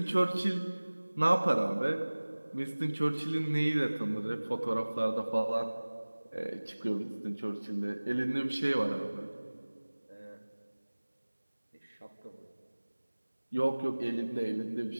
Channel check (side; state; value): both; inverted; correlation -1.00